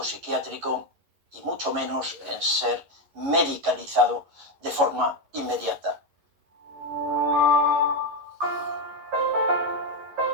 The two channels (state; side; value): late; left; 11 ms